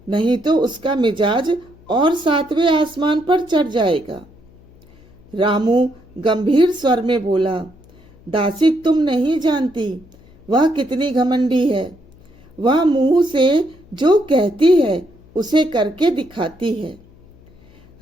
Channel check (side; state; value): left; noise; hum, 26 dB below the sound